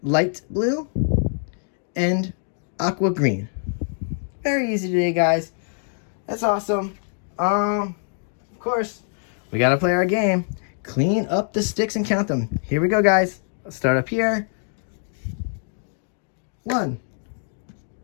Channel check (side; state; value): right; silent; 62 dB below the other